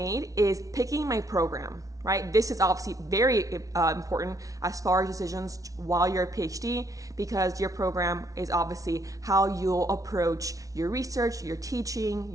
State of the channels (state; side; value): late; left; 0.17 ms